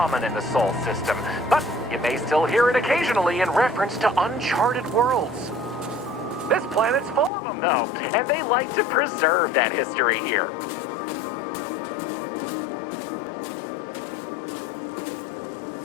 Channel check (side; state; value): right; drops out; at 7.3 s